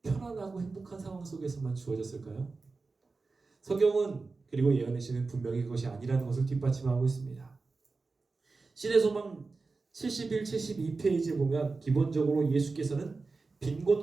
편안하고 행복한 상황 속에서만 주어졌을까요? 성경은 그리고 예언의 시는 분명히 그것이 아니라는 것을 뒷받침하고 있습니다. 신의 소망 71, 72페이지에 보면 기본적으로 예수께서는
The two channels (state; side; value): quieter; left; 4.0 dB